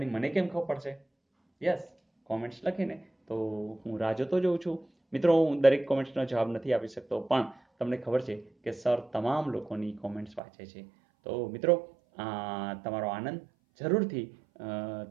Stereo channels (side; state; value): left; drops out; at 10.4 s